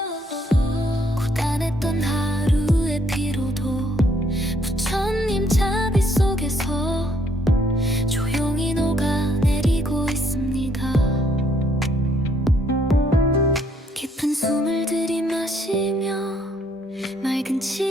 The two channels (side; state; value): both; normal; correlation 0.68